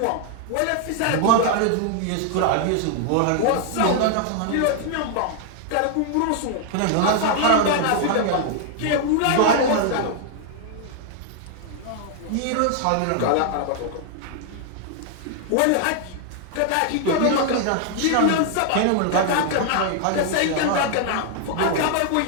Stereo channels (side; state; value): both; different; correlation 0.00